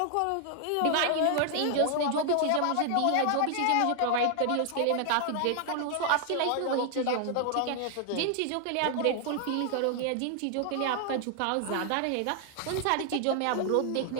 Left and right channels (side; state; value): both; different; correlation 0.00